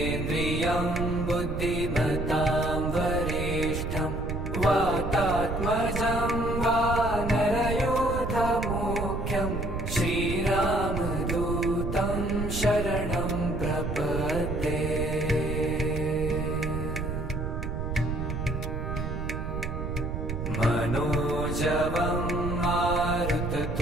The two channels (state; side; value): noise; right; rumble, 4 dB below the sound